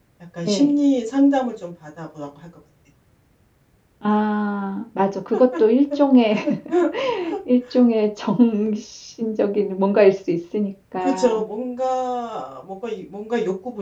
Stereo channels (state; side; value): identical; both; correlation 1.00